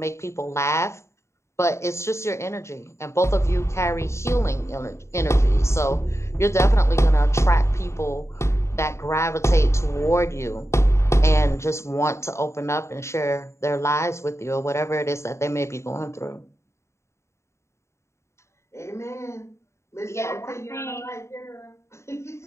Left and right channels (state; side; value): late; right; 0.14 ms